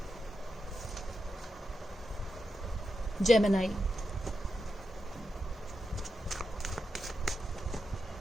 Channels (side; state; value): both; normal; correlation 0.88